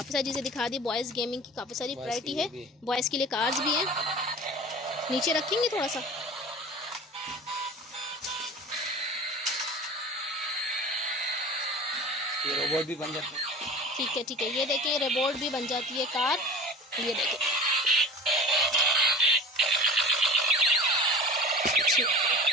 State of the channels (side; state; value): both; normal; correlation 0.37